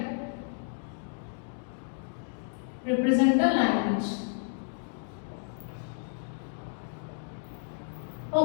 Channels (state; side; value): silent; right; digital silence